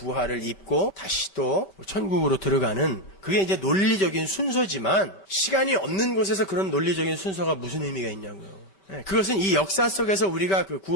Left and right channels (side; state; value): right; late; 8.1 ms